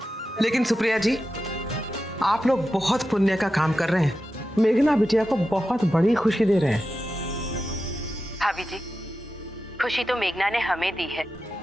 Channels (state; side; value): normal; both; correlation 0.91